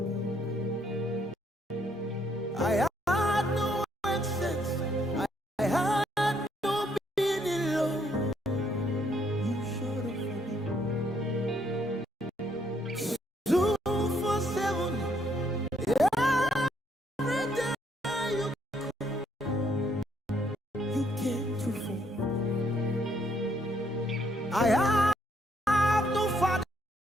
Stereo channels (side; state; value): both; normal; correlation 0.70